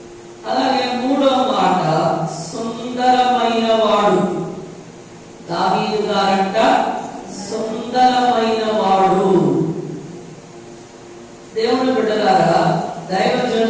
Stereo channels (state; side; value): identical; both; correlation 1.00